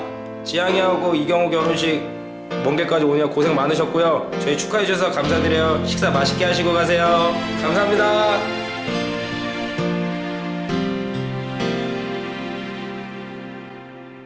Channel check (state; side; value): identical; both; correlation 1.00